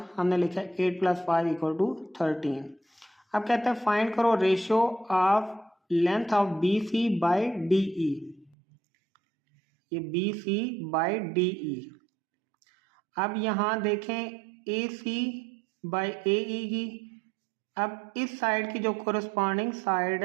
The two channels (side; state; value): left; drops out; at 8.6 s